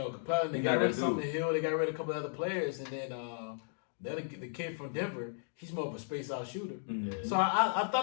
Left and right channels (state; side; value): silent; right; digital silence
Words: Capella, they got rid of Sumner Hill, they got rid of a couple of other players, and then the kid from Denver, he's more of a space-out shooter. Mm-hmm. So I